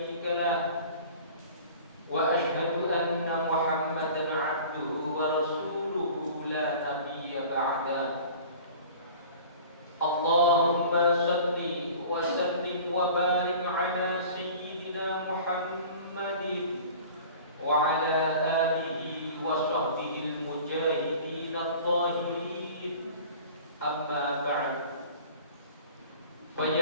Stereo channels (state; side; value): inverted; both; correlation -0.43